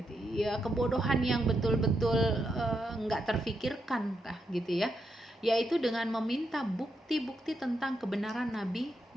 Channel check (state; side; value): normal; both; correlation 0.82